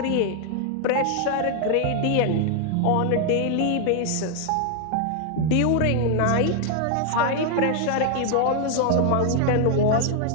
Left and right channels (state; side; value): different; both; correlation 0.00